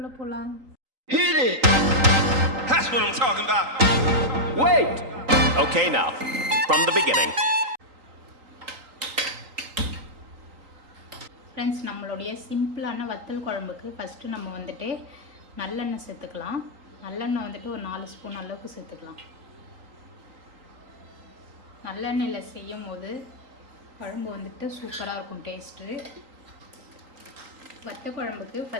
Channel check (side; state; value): left; late; 3.9 ms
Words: போகலாம். Hit it! That's what I'm talking about. Wait! Okay, now, from the beginning. Friends, நம்மளுடைய சிம்பிளான வத்தல் குழம்புக்கு ஃபஸ்ட்டு நம்ம வந்துட்டு நல்லெண்ணெய் சேர்த்துக்கலாம். நல்லெண்ணெய் வந்துட்டு ஒரு 4 ஸ்பூன் அளவுக்கு சேர்த்துக்கலாம். நல்லெண்ணெயில் செய்யும் போது குழம்பு வந்துட்டு சூப்பராக இருக்கும் டேஸ்ட்டு. வத்த குழம்புக்கு